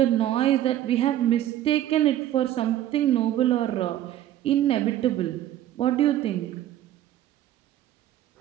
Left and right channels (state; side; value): quieter; left; 12.6 dB